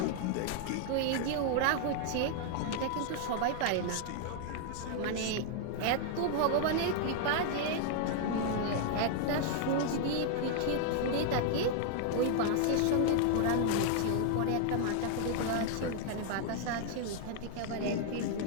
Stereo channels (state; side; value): different; both; correlation 0.00